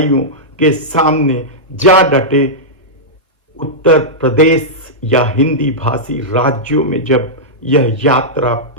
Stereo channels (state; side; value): normal; both; correlation -0.10